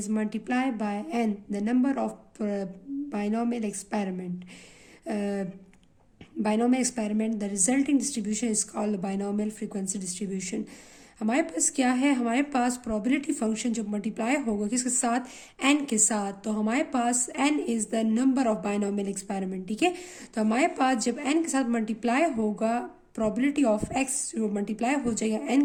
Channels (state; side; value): identical; both; correlation 1.00